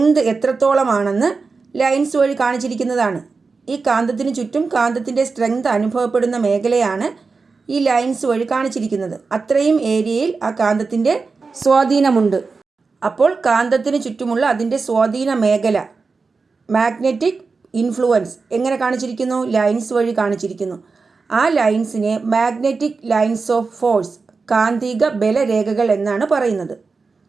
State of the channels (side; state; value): left; quieter; 4.4 dB